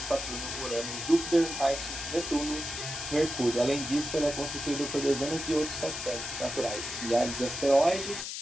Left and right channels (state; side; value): noise; left; hiss, 6 dB below the sound